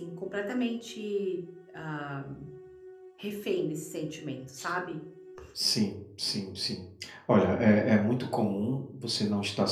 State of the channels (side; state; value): both; identical; correlation 1.00